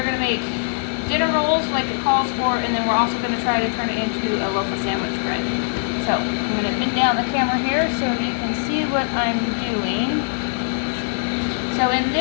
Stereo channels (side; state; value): right; silent; digital silence